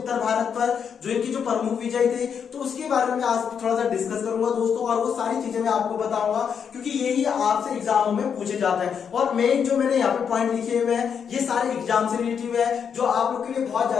भारत पर, जो इनकी जो प्रमुख विजय थे, तो उसके बारे में आज थोड़ा सा डिस्कस करूंगा दोस्तों, और वो सारी चीजें मैं आपको बताऊंगा क्योंकि यही आपसे एग्जामों में पूछे जाता है। और मेन जो मैंने यहाँ पे पॉइंट लिखे हुए हैं ये सारे एग्जाम से रिलेटिव है, जो आप लोग के लिए बहुत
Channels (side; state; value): right; quieter; 7.2 dB